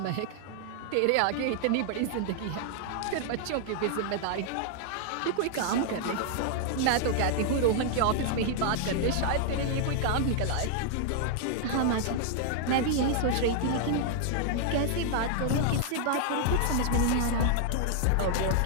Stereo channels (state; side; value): different; both; correlation -0.01